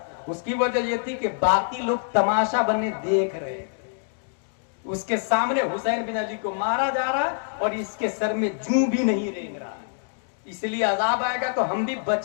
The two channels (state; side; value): silent; right; digital silence